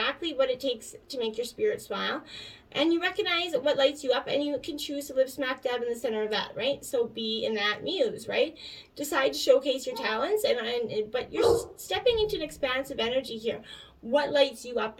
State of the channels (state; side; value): identical; both; correlation 1.00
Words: what it takes to make your spirit smile. And you recognize what lights you up, and you can choose to live smack dab in the center of that, right? So be in that muse, right? Decide to showcase your talents, but you're stepping into an expansive energy here. What lights you up